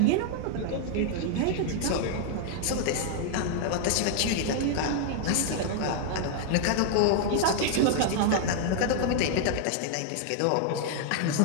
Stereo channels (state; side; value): different; both; correlation 0.00